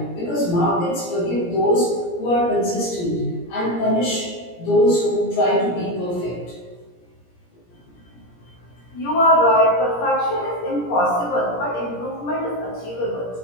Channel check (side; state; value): right; late; 17 ms